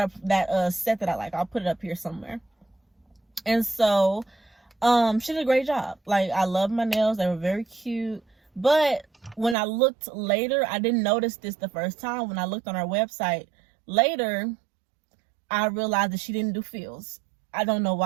set that I like. I'll put it up here somewhere. And so she did a great job. Like, I love my nails. They were very cute. But when I looked later, I didn't notice this the first time. When I looked on her website later, I realized that she didn't do feels. I don't know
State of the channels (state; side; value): drops out; left; at 9.6 s